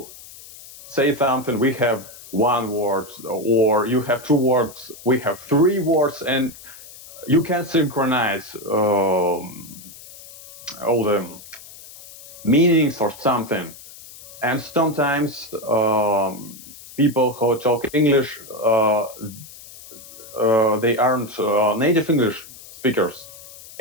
say something. We have one word, or you have two words. We have three words, and you can synchronize all the meanings or something. And sometimes people who talk English, they aren't native English speakers.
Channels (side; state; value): left; noise; hiss, 18 dB below the sound